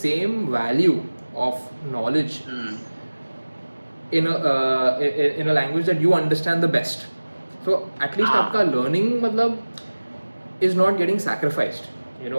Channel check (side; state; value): both; inverted; correlation -1.00